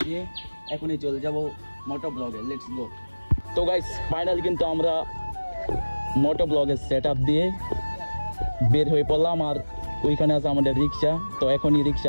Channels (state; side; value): inverted; both; correlation -1.00